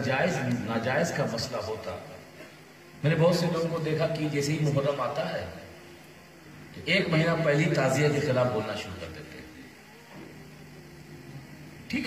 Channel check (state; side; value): identical; both; correlation 1.00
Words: جائز ناجائز کا مسئلہ ہوتا، میں نے بہت سے لوگوں کو دیکھا کہ جیسے ہی محرم آتا ہے تو ایک مہینہ پہلی تعزیہ کے خلاف بولنا شروع کر دیتے ہیں.